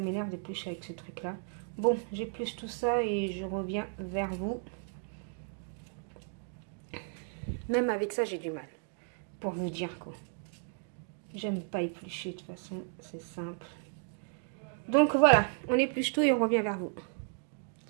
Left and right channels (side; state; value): left; silent; 55 dB below the other